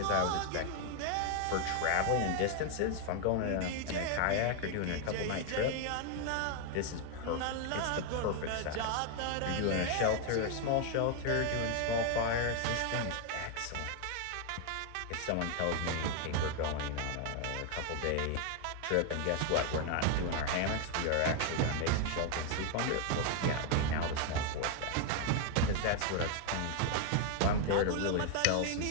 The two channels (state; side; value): different; both; correlation 0.00